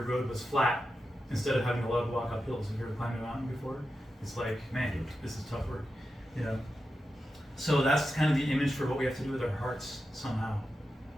road was flat instead of having a lot of walk up hills. If you ever climbed a mountain before, it's like, man, this is tough work, you know. So that's kind of the image for what we have to do with our hearts somehow.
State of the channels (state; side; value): normal; both; correlation 0.90